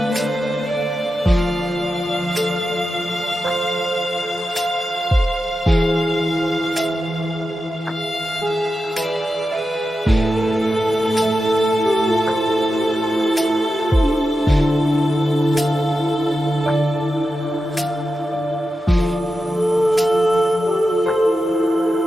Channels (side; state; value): both; normal; correlation 0.90